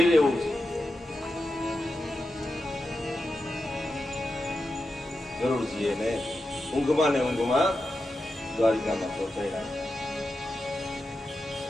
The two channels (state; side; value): normal; both; correlation 0.89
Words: એવું છે. ગરુડજી એને ઊંઘમાં ને ઊંઘમાં દ્વારિકામાં પહોંચાડ્યા.